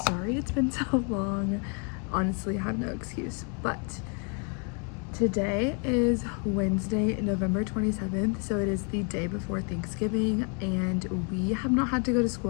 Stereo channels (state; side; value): quieter; right; 37.9 dB